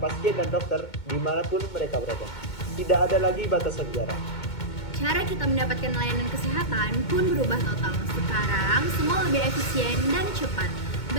dan dokter dimanapun mereka berada. Tidak ada lagi batasan jarak. Cara kita mendapatkan layanan kesehatan pun berubah total. Sekarang, semua lebih efisien dan cepat.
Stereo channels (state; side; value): late; right; 2.2 ms